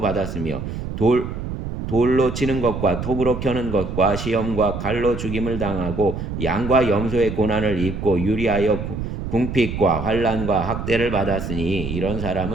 받았으며 돌로 치는 것과 톱으로 켜는 것과 시험과 칼로 죽임을 당하고 양과 염소의 고난을 입고 유리하여 궁핍과 환난과 학대를 받았으니 이런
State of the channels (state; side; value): noise; right; rumble, 6 dB below the sound